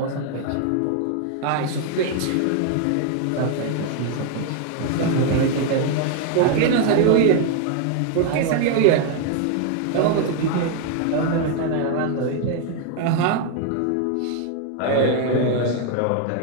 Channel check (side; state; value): both; different; correlation 0.01